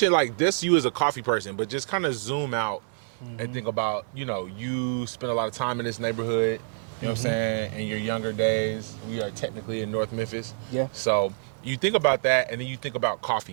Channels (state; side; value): silent; left; digital silence